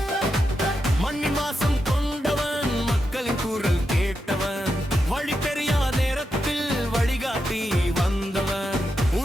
மண்ணின் வாசம் கொண்டவன், மக்களின் குரல் கேட்டவன், வழி தெரியாத நேரத்தில் வழிகாட்டி வந்தவன்,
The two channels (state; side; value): normal; both; correlation 0.86